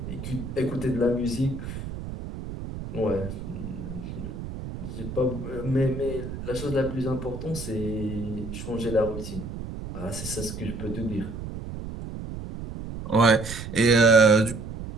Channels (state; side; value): noise; right; rumble, 8 dB below the sound